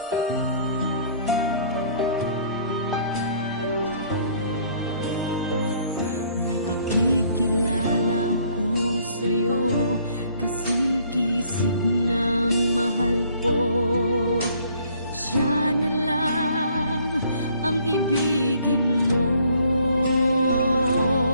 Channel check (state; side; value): inverted; both; correlation -0.61